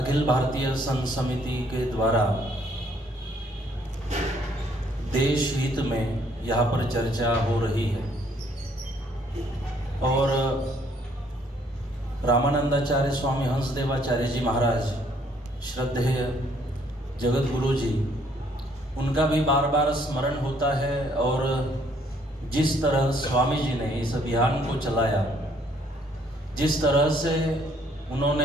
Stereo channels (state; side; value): normal; both; correlation 0.65